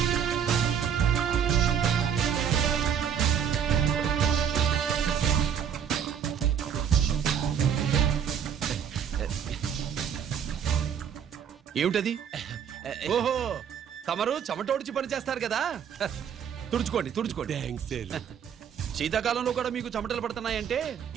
ఏమిటది? ఓహో, తమరు చెమటోడ్చి పని చేస్తారు కదా. తుడుచుకోండి తుడుచుకోండి. శీతాకాలంలో కూడా మీకు చెమటలు పడుతున్నాయంటే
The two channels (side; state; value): left; quieter; 8.1 dB